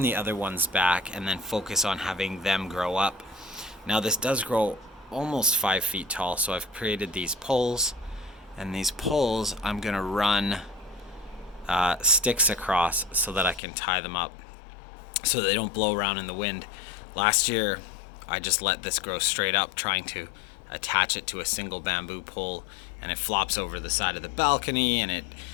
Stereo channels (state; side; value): drops out; right; at 13.6 s